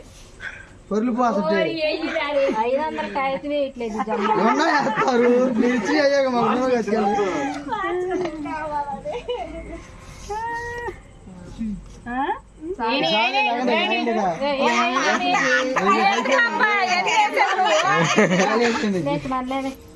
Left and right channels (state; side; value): identical; both; correlation 1.00